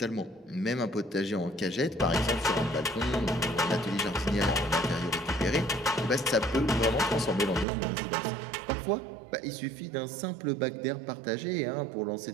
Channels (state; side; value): drops out; left; at 7.7 s